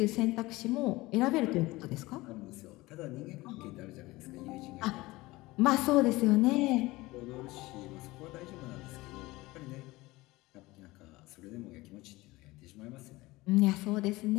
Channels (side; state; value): right; quieter; 20.2 dB